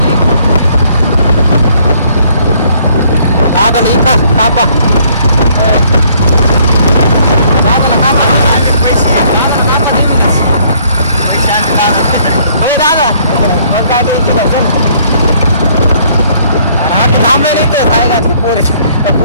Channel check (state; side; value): inverted; both; correlation -0.63